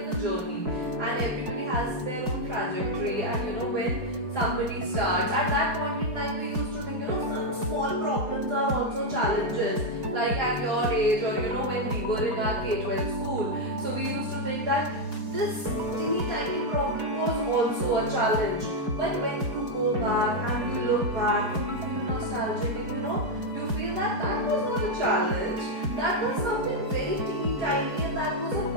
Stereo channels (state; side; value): late; left; 4.7 ms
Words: a journey, and everybody has their own trajectory. And when somebody starts, at that point in time, we used to think, some small problems are also challenges. Like at your age, or when we were in our K-12 school, so we used to think that this teeny tiny problem was also a challenge. But when you go back and you look back and you feel nostalgic, and you feel that that was not a challenge, that was something very teeny tiny, and that was a